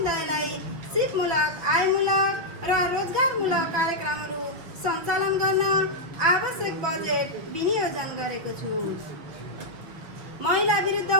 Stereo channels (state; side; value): late; left; 6.0 ms